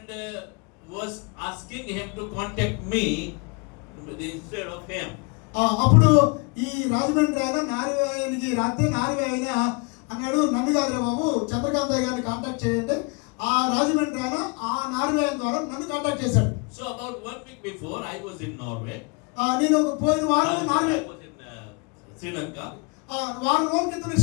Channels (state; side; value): quieter; right; 32.0 dB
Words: was asking him to contact me instead of him. అప్పుడు ఈ రాజమండ్రి ఆయన నార్వేకి రాస్తే నార్వే ఆయన అన్నాడు, నన్ను కాదురా బాబు చంద్రకాంత్ గారిని కాంటాక్ట్ చేయండి. ఆ రాజమండ్రి ఆయన ఆ నార్వే ద్వారా నన్ను కాంటాక్ట్ చేశాడు. So about 1 week before I was in Norway. నేను పోయిన వారం Norway I was in Sri Lanka. వారం రోజుల క్రితం